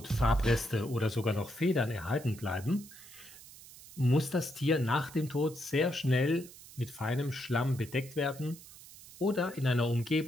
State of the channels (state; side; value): noise; right; hiss, 18 dB below the sound